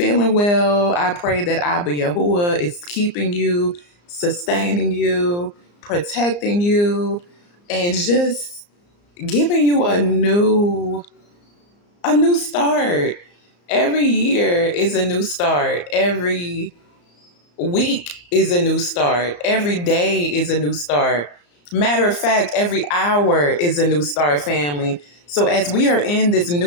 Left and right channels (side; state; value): right; late; 34 ms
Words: well. I pray that Abba Yahuwah is keeping you, sustaining you, protecting you, and just giving you a new start. Every year is a new start. Every week is a new start. Every day is a new start. Matter of fact, every hour is a new start, family. So as we are in this